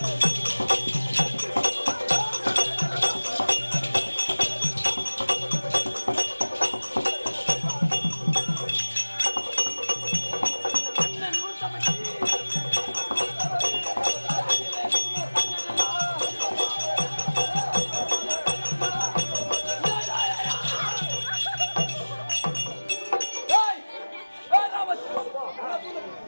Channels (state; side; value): inverted; both; correlation -1.00